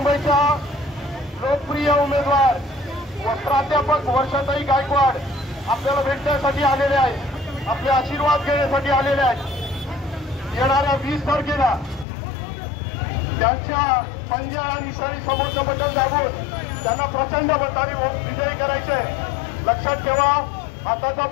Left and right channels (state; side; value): drops out; right; at 12.1 s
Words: लोकप्रिय उमेदवार व प्राध्यापक वर्षाताई गायकवाड आपल्याला भेटण्यासाठी आलेले आहेत, आपले आशीर्वाद घेण्यासाठी आलेले आहेत। येणाऱ्या 20 तारखेला त्यांच्या पंजा आणि सरी समोरचं बटन दाबून त्यांना प्रचंड मताने विजयी करायचे। लक्षात ठेवा, हाताचा